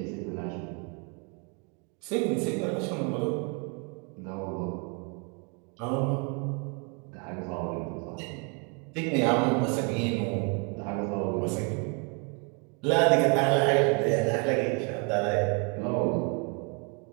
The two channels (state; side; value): quieter; left; 34.0 dB